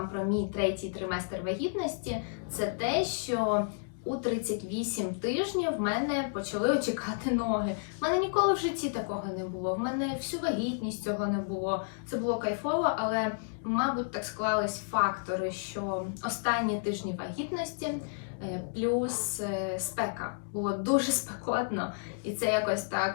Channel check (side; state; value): right; silent; digital silence